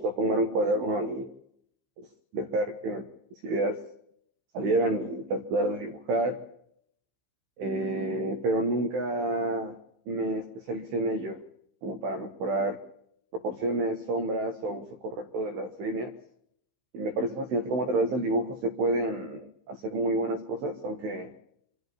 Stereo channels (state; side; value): late; left; 16 ms